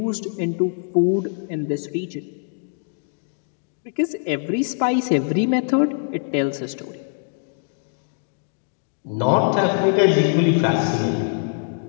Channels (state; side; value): silent; right; digital silence